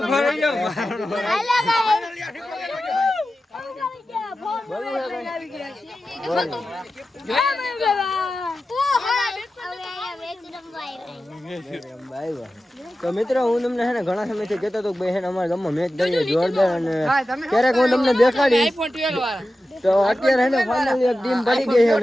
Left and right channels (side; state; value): both; normal; correlation 0.93